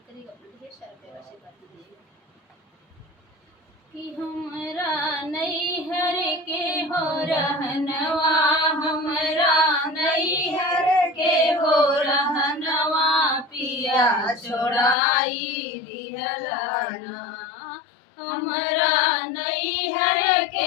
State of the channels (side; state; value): right; drops out; at 15.0 s